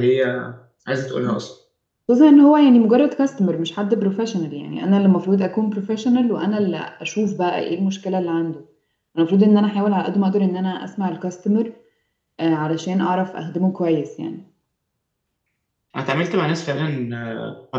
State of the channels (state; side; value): identical; both; correlation 1.00